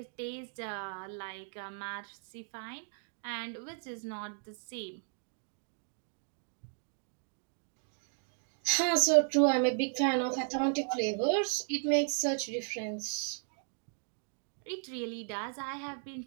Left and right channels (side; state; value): left; silent; 54 dB below the other